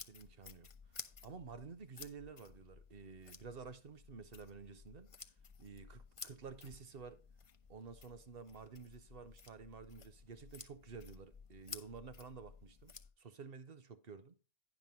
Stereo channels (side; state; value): left; late; 1.5 ms